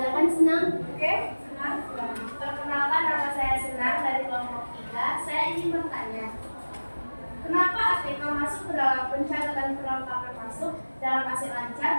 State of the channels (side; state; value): both; inverted; correlation -1.00